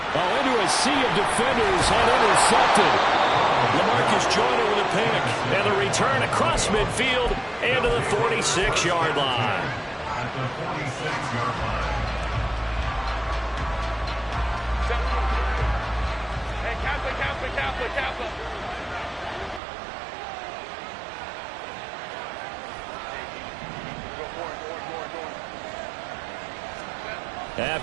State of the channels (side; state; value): left; drops out; at 19.6 s